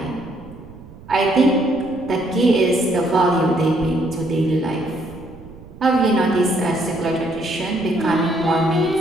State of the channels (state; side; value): noise; right; rumble, 19 dB below the sound